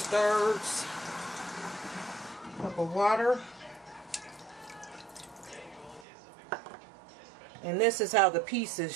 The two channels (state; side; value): drops out; left; at 6.1 s